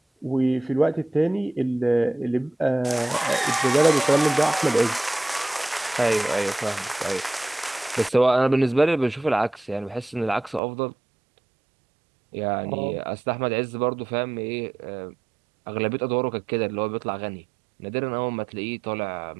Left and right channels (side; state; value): left; drops out; at 10.6 s